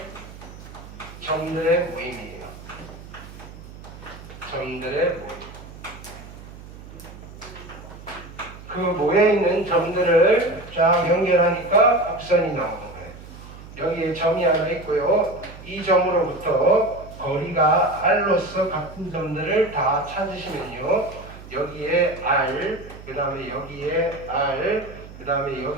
점들의 모임이에요. 점들의 모임. 그 모여있는 점들을 쫙 연결하니까 곡선이 나오는 거예요. 여기에 점이 하나 있고요. 이 점으로부터 거리가 R로서 같은 점들을 다 찾으시면요, 여기에 R, 그 다음에 여기에 R, 그 다음에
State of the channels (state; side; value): noise; right; hum, 16 dB below the sound